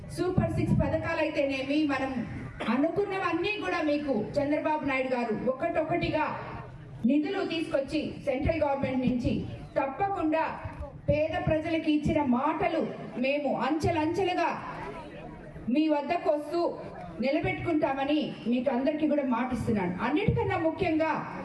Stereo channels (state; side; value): identical; both; correlation 1.00